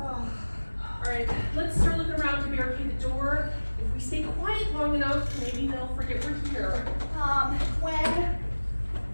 Alright, let's start looking around to barricade the door. If we stay quiet long enough, maybe they'll forget we're here. Gwen,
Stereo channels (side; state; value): both; inverted; correlation -1.00